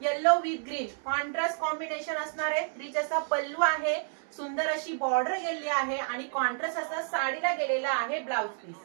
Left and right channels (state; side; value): silent; left; digital silence